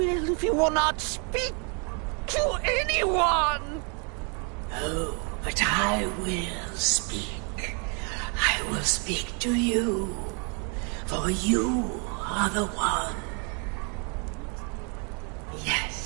if you will not speak to anyone? Oh, but I will speak. I will speak to you. For you are the one.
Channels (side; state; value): left; quieter; 36.6 dB